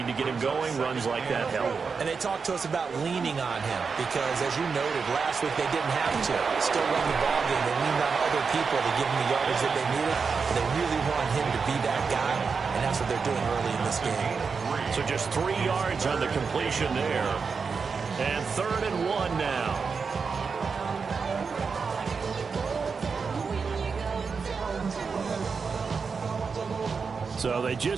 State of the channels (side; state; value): left; quieter; 5.3 dB